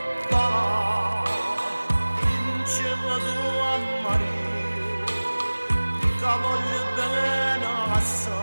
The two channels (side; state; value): both; inverted; correlation -1.00